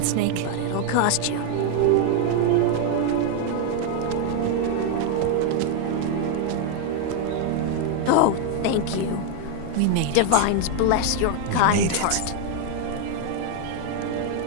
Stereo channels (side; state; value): both; different; correlation 0.01